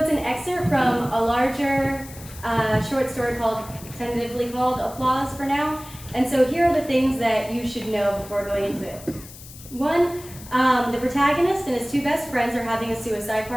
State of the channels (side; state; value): left; noise; hiss, 17 dB below the sound